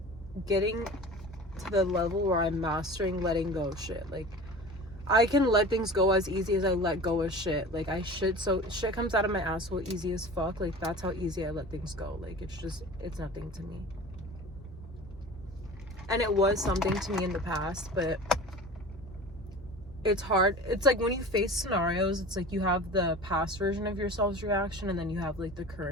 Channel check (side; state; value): both; normal; correlation 0.37